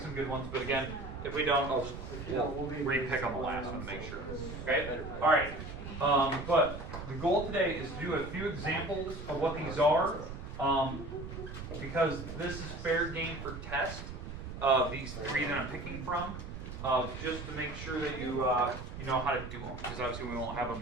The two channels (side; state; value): right; noise; rumble, 9 dB below the sound